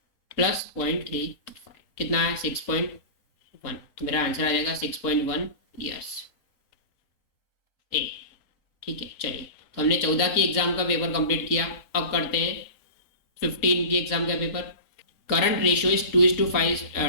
प्लस 0.35 कितना है 6.1, तो मेरा आंसर आ जाएगा 6.1 ईयर्स ए। ठीक है, चलिए तो हमने 14 की एग्जाम का पेपर कंप्लीट किया। अब करते हैं 15 की एग्जाम का paper. Current ratio is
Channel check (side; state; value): right; late; 3.7 ms